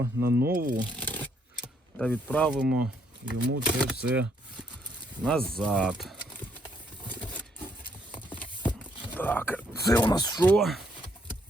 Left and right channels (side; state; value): both; normal; correlation 0.71